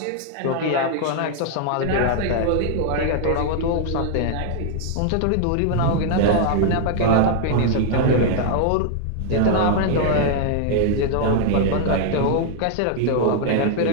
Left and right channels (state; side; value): different; both; correlation 0.00